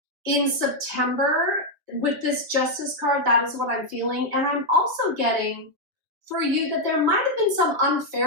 In September, with this Justice card, that is what I'm feeling. And I'm also getting for you that there might have been some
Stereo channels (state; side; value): late; left; 6.7 ms